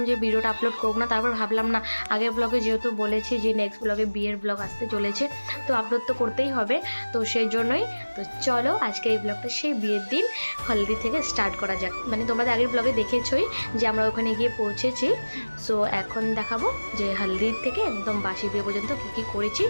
যে ভিডিওটা আপলোড করব না। তারপর ভাবলাম না, আগের ব্লগে যেহেতু বলেছি যে নেক্সট ব্লগে বিয়ের ব্লগ আসতে চলেছে, তো আপলোড তো করতেই হবে। তো সেই জন্যই তো চলো আজকে এই ব্লগটা সেই বিয়ের দিন হলদি থেকে স্টার্ট করা যাক। মানে তোমরা আগের ব্লগে দেখেছই যে আমরা ওখানে গিয়ে পৌঁছেছি। সো এখন দেখাবো যে হলদির থেকে একদম বাসি বিয়ে পর্যন্ত কী কী করেছি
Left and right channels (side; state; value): both; inverted; correlation -1.00